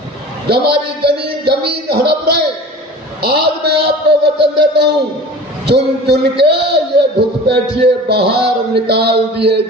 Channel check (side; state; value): both; normal; correlation 0.39